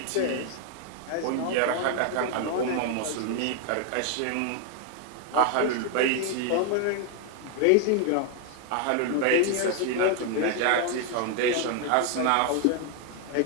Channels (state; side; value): different; both; correlation 0.00